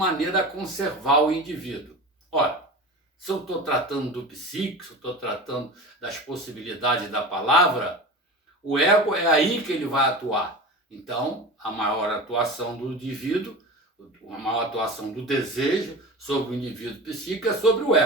a conservar o indivíduo. Ora, se eu estou tratando do psíquico, se eu estou tratando das possibilidades da palavra, o ego é aí que ele vai atuar. Então, a maior atuação do indivíduo, a maior atuação do desejo sobre o indivíduo psíquico é sobre o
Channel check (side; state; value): both; normal; correlation 0.31